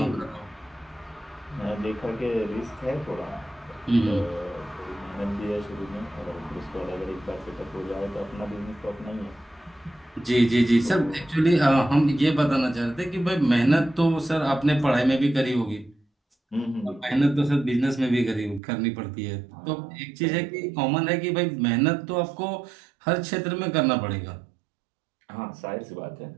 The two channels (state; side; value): drops out; left; at 18.6 s